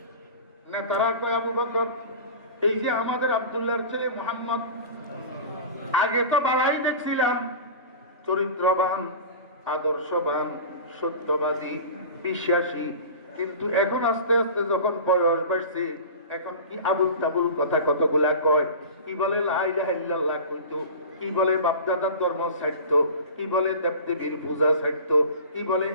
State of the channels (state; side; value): inverted; both; correlation -0.34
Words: নেতারা কয় আবু বকর এই যে আমাদের আব্দুল্লাহর ছেলে মোহাম্মদ, আগে তো বালাই দেখছিলাম, চরিত্রবান, আদর্শবান, সত্যবাদী, বিশ্বাসী, কিন্তু এখন আস্তে আস্তে যখন বয়স বাড়ছে এখন কি আবুল তাবুল কথা কতগুলা কয়, কি বলে লা ইলাহা ইল্লাল্লাহ কইতো, কি বলে বাপদাদার ধর্ম ছাড়তো, কি বলে দেবদেবীর পূজা ছাড়তো, কি বলে